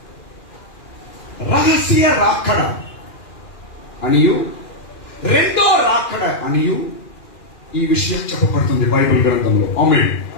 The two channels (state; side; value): late; right; 2.4 ms